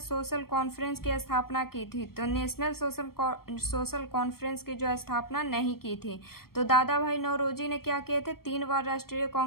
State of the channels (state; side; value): late; right; 0.94 ms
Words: कॉन्फ्रेंस की स्थापना की थी। तो नेशनल सोशल कॉन्फ्रेंस की जो स्थापना नहीं की थी। तो दादा भाई नौरोजी ने क्या किए थे, 3